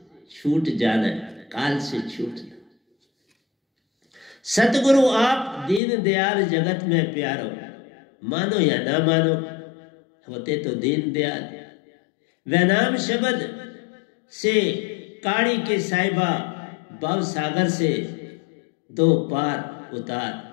छूट जाना है, काल से छूटना। सतगुरु आप दीन दयाल जगत में प्यारो, मानो या ना मानो, होते तो दीन दयाल। वैनाम शब्द से काड़ी के साहिबा, भव सागर से 2 पार उतार।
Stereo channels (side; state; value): right; drops out; at 5.8 s